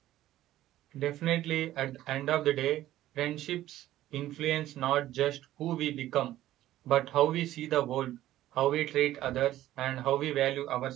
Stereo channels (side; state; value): left; quieter; 14.1 dB